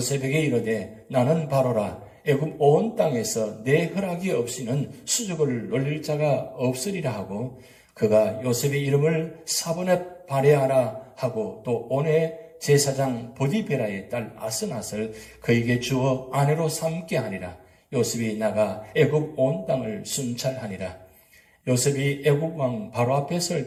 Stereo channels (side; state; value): both; identical; correlation 1.00